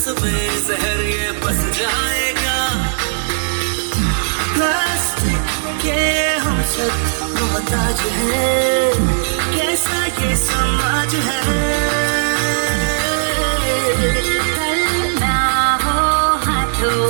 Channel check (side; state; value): left; silent; digital silence